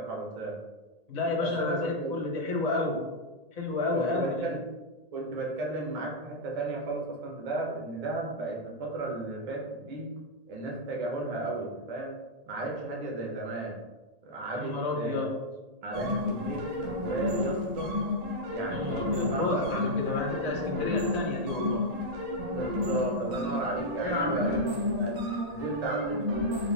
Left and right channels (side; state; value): left; late; 1.8 ms